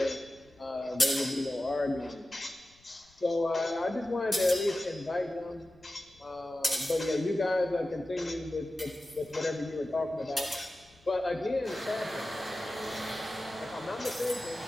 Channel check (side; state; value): left; noise; rumble, 29 dB below the sound